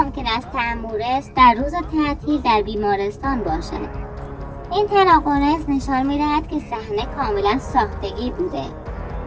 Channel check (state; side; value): identical; both; correlation 1.00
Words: است تمورس در روز تعطیل در بیمارستان باشد؟ این تناقض نشان می‌دهد که صحنه کاملا ساختگی بوده.